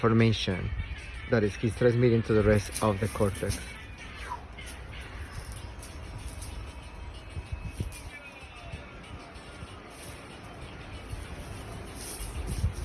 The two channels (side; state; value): both; identical; correlation 1.00